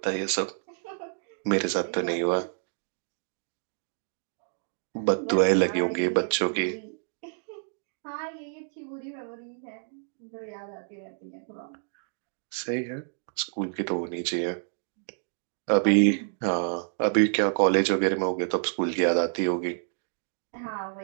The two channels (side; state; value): left; silent; digital silence